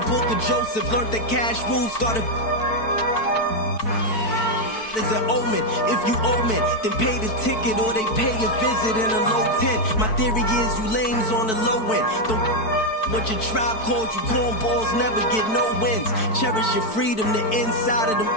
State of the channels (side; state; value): right; late; 4.6 ms